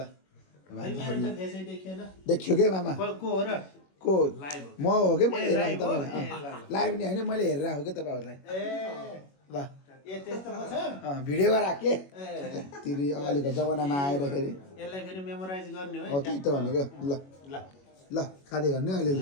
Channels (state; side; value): late; right; 21 ms